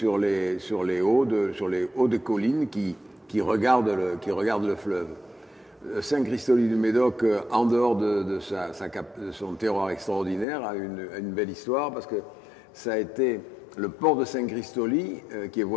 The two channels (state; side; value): drops out; right; at 10.5 s